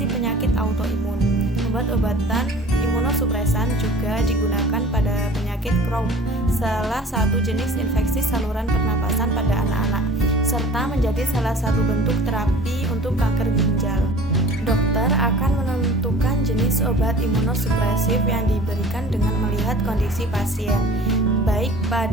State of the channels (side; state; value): both; normal; correlation 0.45